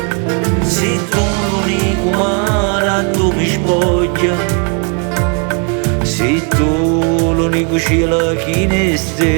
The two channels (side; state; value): left; quieter; 38.0 dB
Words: sei tu l'unico mare tu mi spoglia, sei tu l'unico cielo che ne